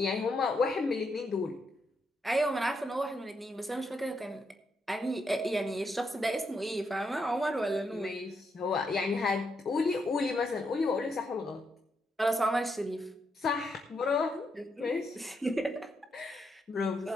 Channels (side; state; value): both; normal; correlation 0.80